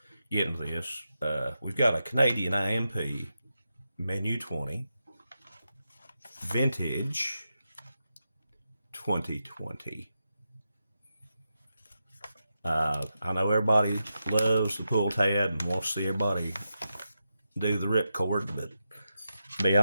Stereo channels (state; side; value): inverted; both; correlation -0.88